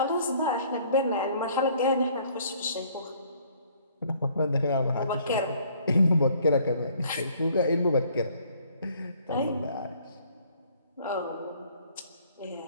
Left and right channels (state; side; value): inverted; both; correlation -0.60